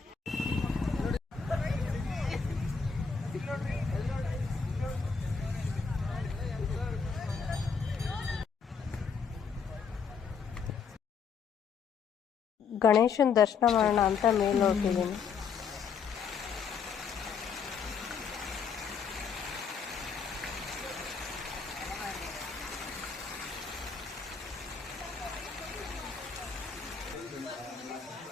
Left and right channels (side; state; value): right; quieter; 5.9 dB